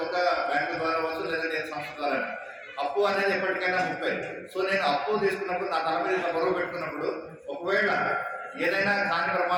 ఒక బ్యాంకు ద్వారా అవ్వచ్చు, లేదంటే సంస్థ ద్వారా, అప్పు అనేది ఎప్పటికైనా 30. సో నేను అప్పు తీసుకున్నప్పుడు నా తల మీద బరువు పెట్టుకున్నప్పుడు ఒకవేళ ఏదైనా కాని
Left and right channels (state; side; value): identical; both; correlation 1.00